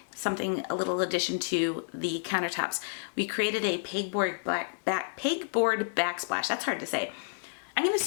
a little addition to the countertops. We created a pegboard backsplash. That's hard to say. I'm going to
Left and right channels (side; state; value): right; silent; digital silence